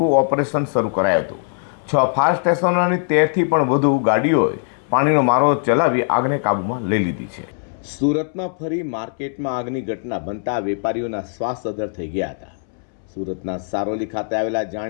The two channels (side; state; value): right; silent; 65 dB below the other